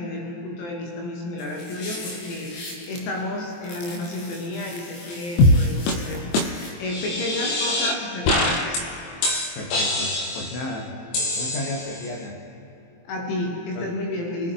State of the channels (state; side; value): late; right; 23 ms